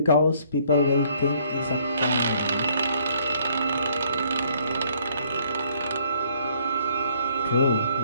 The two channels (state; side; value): inverted; both; correlation -0.64